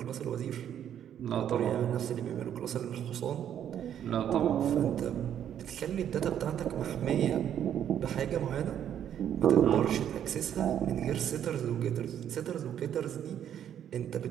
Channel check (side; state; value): left; quieter; 9.8 dB